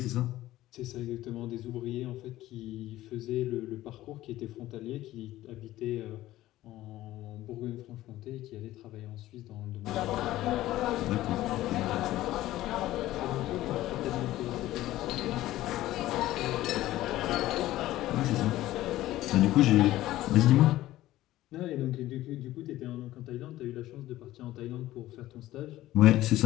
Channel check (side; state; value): right; quieter; 15.4 dB